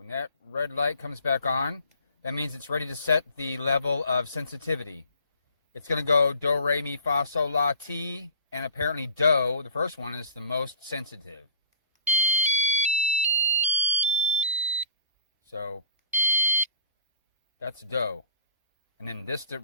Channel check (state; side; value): inverted; both; correlation -0.46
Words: that red light comes back on, that means it's ready to set the level of sensitivity. It's going to go do, re, mi, fa, sol, la, ti, and apparently do, the first one, is the most sensitive. So that's do. And then this to